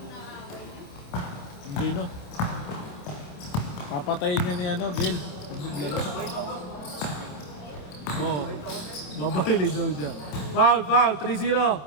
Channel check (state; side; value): late; right; 27 ms